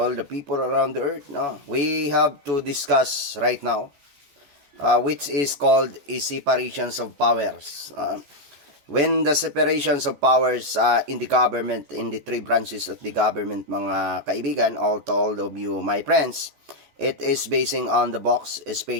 the people around the earth. No, we have to discuss right now, which is called a separations of powers. When the separations of powers in the government, in the three branches of the government, mga kaibigan, all to all of you, my friends, it is basing on the box,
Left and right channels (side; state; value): left; late; 14 ms